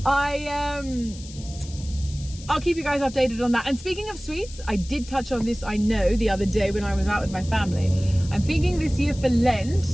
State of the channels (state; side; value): noise; left; hiss, 17 dB below the sound